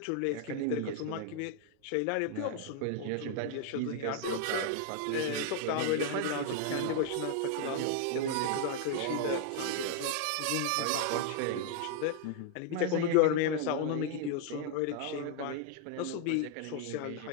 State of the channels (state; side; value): different; both; correlation 0.00